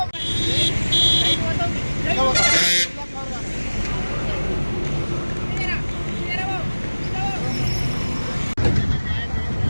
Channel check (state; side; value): inverted; both; correlation -1.00